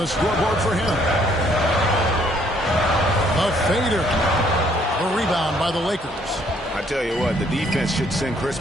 scoreboard for him. A fader. A rebound by the Lakers. I I tell you what, the defense should send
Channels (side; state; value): both; normal; correlation 0.65